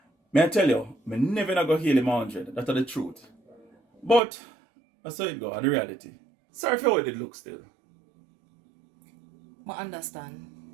May I tell you, I never not go heal him 100. That's the truth. But, I saw it go, the reality. Sorry for how it did look still. I understand.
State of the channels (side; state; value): left; drops out; at 4.2 s